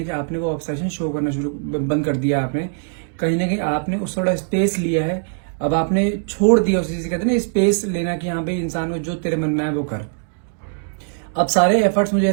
आपने वो ऑब्सेशन शो करना बंद कर दिया। आपने कहीं ना कहीं आपने उस थोड़ा स्पेस लिया है, अब आपने छोड़ दिया उस चीज से, कहते हैं ना स्पेस लेना कि हाँ भाई इंसान को जो तेरे मन में है वो कर। अब सारे एफर्ट्स मुझे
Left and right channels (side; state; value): left; silent; digital silence